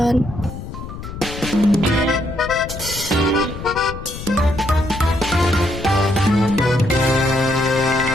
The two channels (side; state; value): left; noise; rumble, 10 dB below the sound